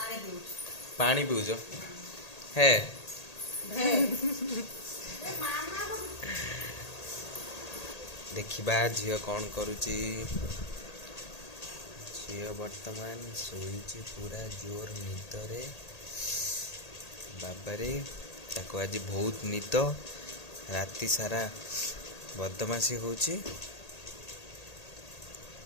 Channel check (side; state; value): right; late; 1.8 ms